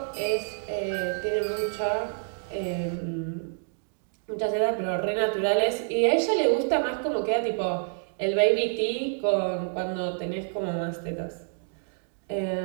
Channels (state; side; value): silent; left; digital silence